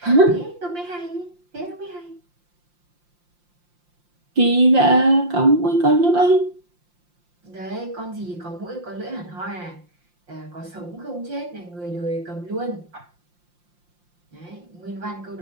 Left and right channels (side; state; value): left; late; 5.7 ms